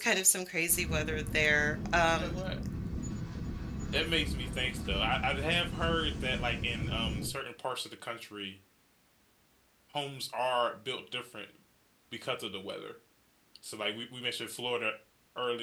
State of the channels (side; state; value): both; identical; correlation 1.00